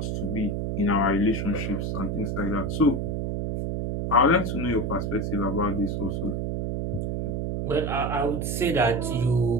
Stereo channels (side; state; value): right; noise; hum, 1 dB below the sound